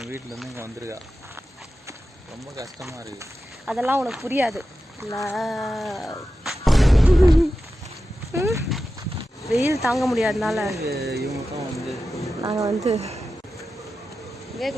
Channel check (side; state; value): both; normal; correlation 0.92